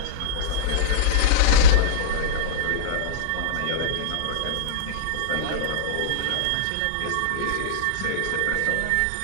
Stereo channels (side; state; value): both; different; correlation -0.03